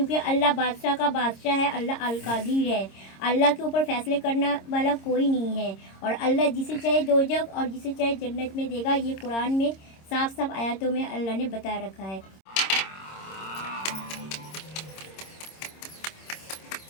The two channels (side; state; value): right; late; 26 ms